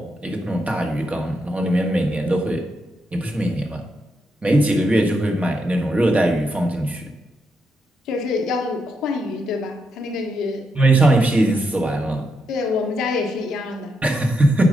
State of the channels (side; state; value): both; normal; correlation 0.82